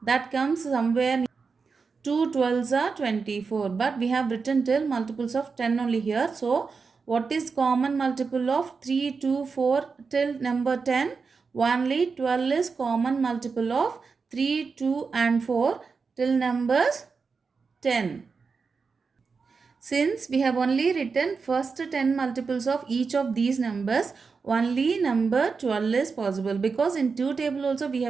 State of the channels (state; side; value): quieter; left; 5.0 dB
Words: that comes somewhere 2 12s are 24. But we have written till multiples of 10 only here. So, what is common multiple of 3, 2, 4 till number 10? Only 12 is common multiple of 3, 2 and 4 till numbers 10. Since we have only written first 10 multiples of each of these numbers, only number 12 is possible. Because in 2 table also we